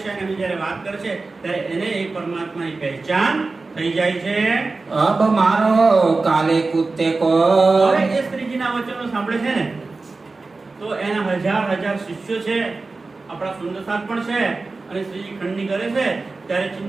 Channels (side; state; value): left; quieter; 3.7 dB